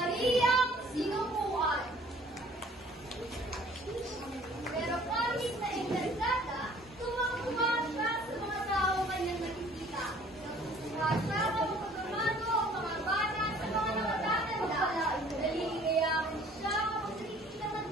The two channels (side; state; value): both; normal; correlation 0.54